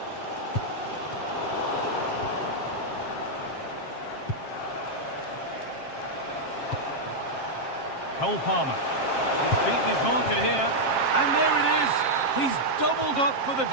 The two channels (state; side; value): late; right; 7.5 ms